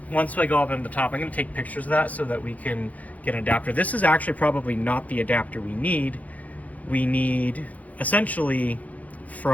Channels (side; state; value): right; late; 0.074 ms